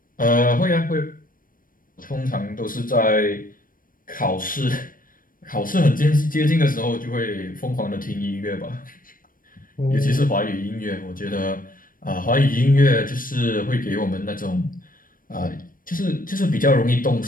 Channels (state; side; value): late; right; 0.40 ms